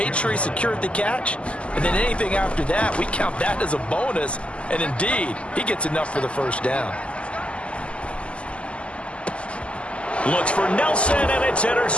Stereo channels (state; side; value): late; right; 0.057 ms